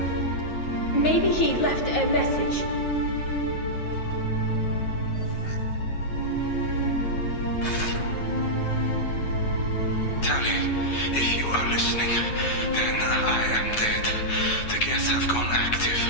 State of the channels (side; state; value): right; late; 9.3 ms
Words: Maybe he left a message. Tali, if you are listening, then I am dead. The Geth have gone active.